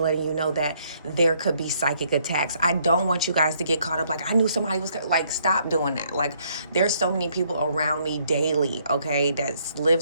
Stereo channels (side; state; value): both; inverted; correlation -0.69